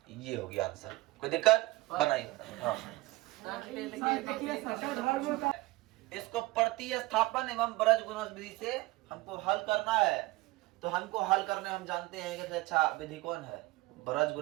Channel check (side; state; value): left; quieter; 20.5 dB